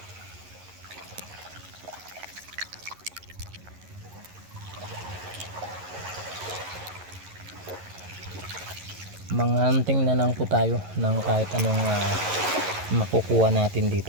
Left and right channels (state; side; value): late; left; 11 ms